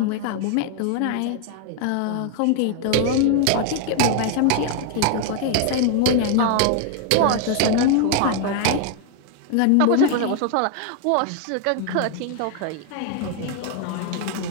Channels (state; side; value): different; both; correlation 0.00